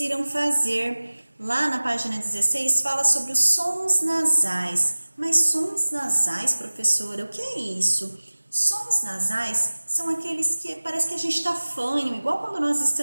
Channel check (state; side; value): inverted; both; correlation -1.00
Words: fazer. Lá na página 16 fala sobre os sons nasais. Mas sons nasais, professora, o que é isso? Sons nasais são aqueles que parece que a gente está fanho, igual quando nós